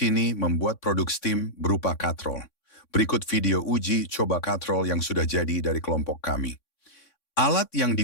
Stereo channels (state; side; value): late; right; 3.6 ms